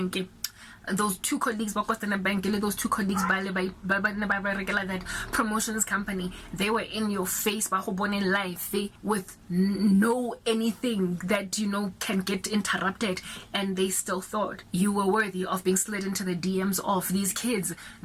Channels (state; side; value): identical; both; correlation 1.00